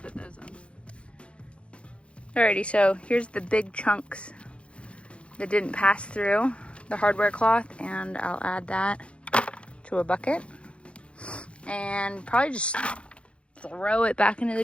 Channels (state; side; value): late; right; 0.060 ms